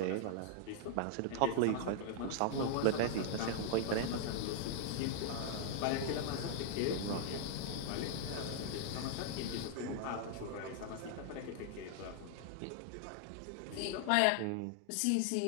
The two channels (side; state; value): both; different; correlation -0.01